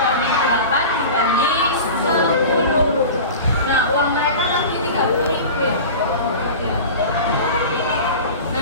8 dibanding 10. Nah, uang mereka tadi 30.000 ya.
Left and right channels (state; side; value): inverted; both; correlation -0.33